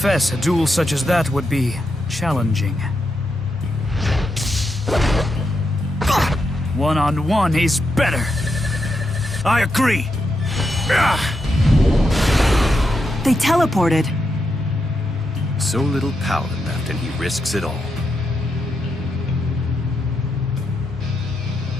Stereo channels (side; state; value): both; normal; correlation 0.84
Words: a duel such as that would be challenging. One-on-one, he's better. I agree. They teleported. So little power left, and he risks it all.